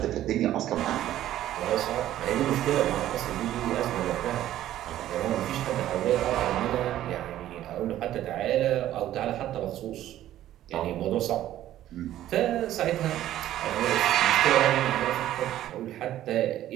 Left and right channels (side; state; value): left; quieter; 13.0 dB